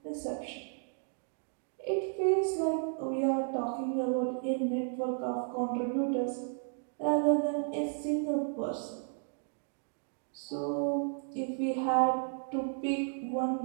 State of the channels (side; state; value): left; silent; 55 dB below the other